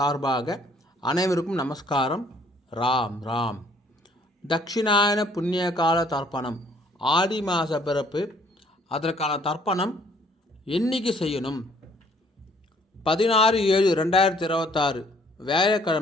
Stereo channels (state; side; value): normal; both; correlation 0.61